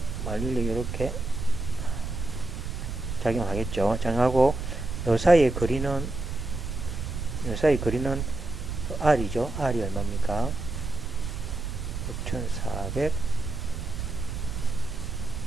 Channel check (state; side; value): noise; right; rumble, 5 dB below the sound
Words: 만륜력이 이렇게 작용하겠죠. 작용하고 요 사이의 거리는 R이죠. R이 얼마입니까? 6,400